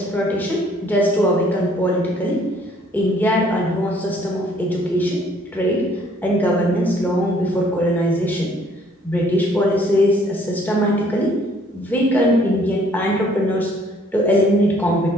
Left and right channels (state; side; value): normal; both; correlation 0.61